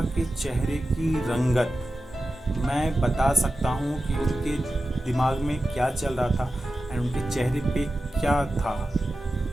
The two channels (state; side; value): normal; both; correlation 0.93